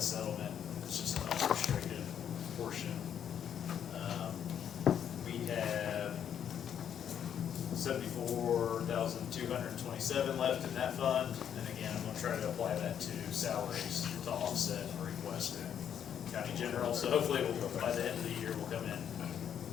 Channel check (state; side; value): quieter; right; 8.9 dB